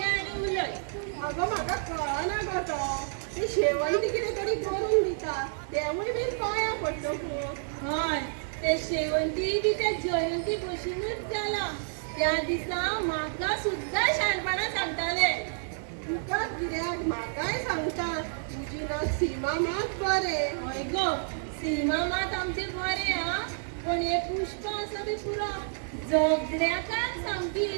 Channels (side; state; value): left; silent; digital silence